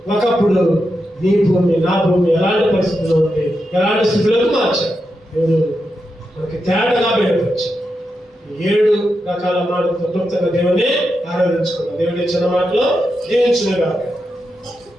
ఒకప్పుడు నీ భూమి నా భూమి ఎలాంటి పరిస్థితుల్లో ఉంది, ఎలాంటి స్థితిలోకి మార్చాడు. దేవుడు మనకి తేటగా బయటపరిచి 7 రకాల మాటలతో క్లుప్తంగా దేవుని ఆరాధించుకున్నాం. దేవుడి చిన్న మాటలో దీవించును గాక.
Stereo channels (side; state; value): both; normal; correlation 0.87